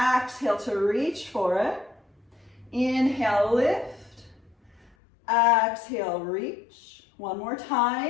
to reach for it. Inhale, lift. Exhale, reach. 1 more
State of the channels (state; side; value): drops out; right; at 5.0 s